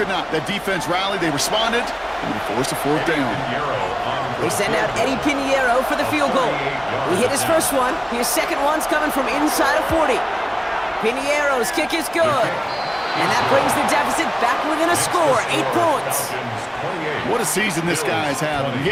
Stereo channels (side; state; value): both; identical; correlation 1.00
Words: not. That defense rallied, they responded, and they forced a 4th down. They send out Eddie Pinheiro for the field goal. He hit his first one. His second one's coming from inside of 40. Pinheiro's kick is good. And that brings the deficit back within a score, 8 points. What a season this guy's having.